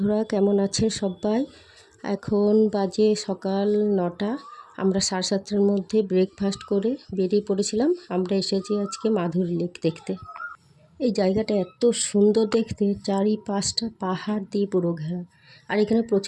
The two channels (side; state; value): both; identical; correlation 1.00